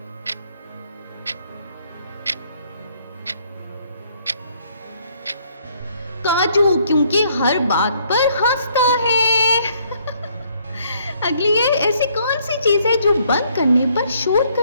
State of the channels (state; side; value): inverted; both; correlation -0.67